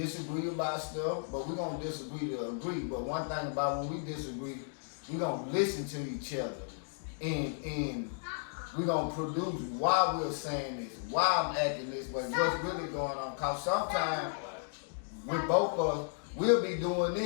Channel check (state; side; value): silent; right; digital silence